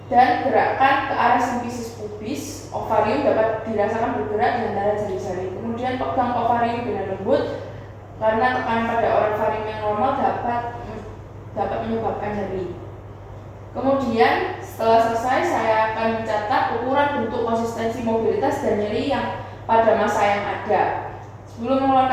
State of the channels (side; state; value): both; identical; correlation 1.00